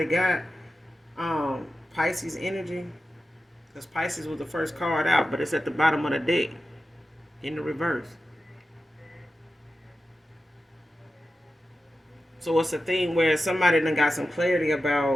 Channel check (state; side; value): normal; both; correlation 0.93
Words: got. Pisces energy. Because Pisces was the first card out, but it's at the bottom of the deck in the reverse. So it's a thing where somebody done got some clarity